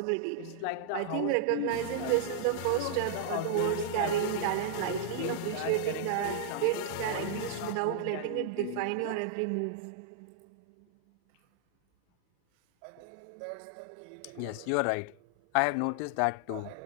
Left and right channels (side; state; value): both; different; correlation -0.01